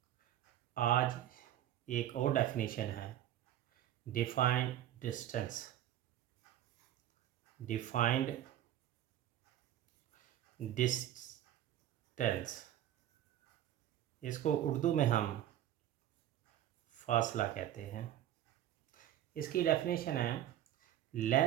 आज एक और डेफिनेशन है, डिफाइंड डिस्टेंस। डिफाइंड डिस्टेंस, इसको उर्दू में हम फासला कहते हैं। इसकी डेफिनेशन है,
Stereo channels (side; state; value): left; quieter; 12.0 dB